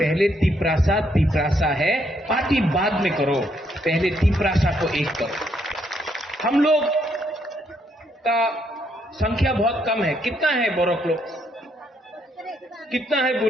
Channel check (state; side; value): normal; both; correlation 0.73